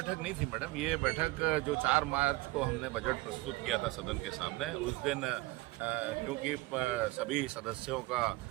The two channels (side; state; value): left; quieter; 21.1 dB